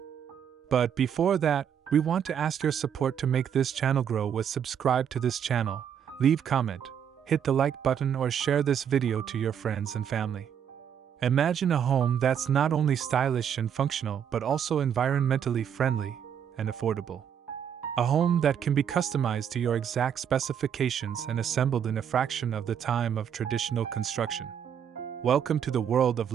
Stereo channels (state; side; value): quieter; left; 8.4 dB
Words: But before that, we want to ask your support to make this channel grow with subscribe to this channel, leave comment, hit the like button or share this video to your friends and family. Imagine a home that's not only stylish and functional but also environmentally friendly and affordable. A home that can be customized to your exact specifications and assembled in a fraction of the time of traditional construction. Welcome to the world of